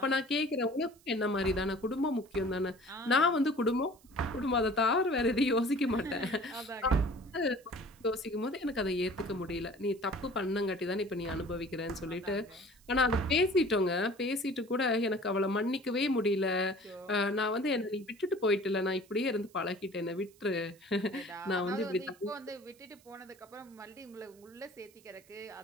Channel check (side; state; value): right; noise; hiss, 28 dB below the sound